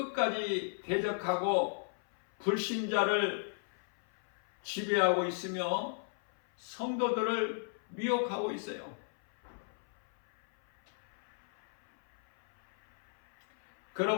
대적하고 불신자를 지배하고 있으며 성도들을 미혹하고 있어요.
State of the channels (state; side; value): silent; right; 55 dB below the other